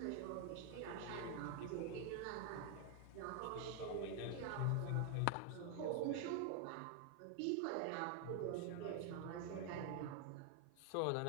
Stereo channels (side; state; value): both; different; correlation 0.00